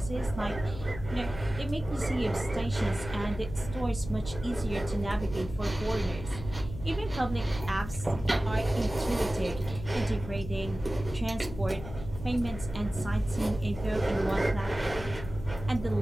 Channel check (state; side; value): noise; left; hum, 11 dB below the sound